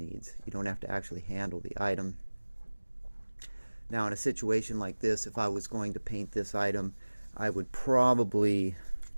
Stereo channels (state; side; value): inverted; both; correlation -1.00